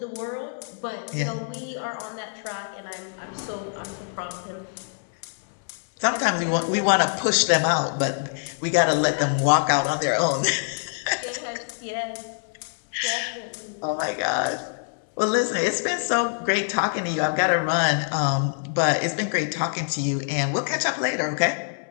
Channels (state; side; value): silent; right; 62 dB below the other